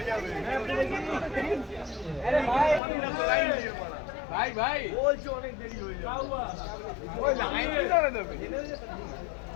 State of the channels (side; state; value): right; drops out; at 2.8 s